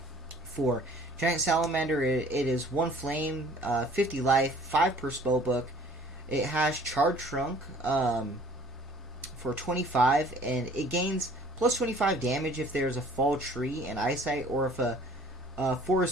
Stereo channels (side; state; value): both; normal; correlation 0.53